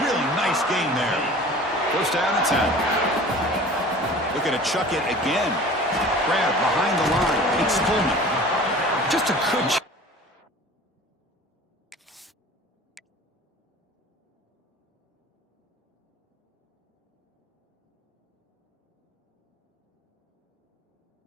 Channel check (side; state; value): both; normal; correlation 0.42